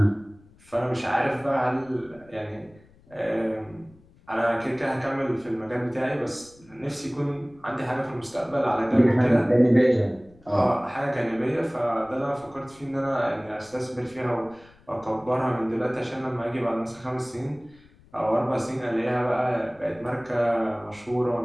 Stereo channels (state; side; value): noise; left; rumble, 27 dB below the sound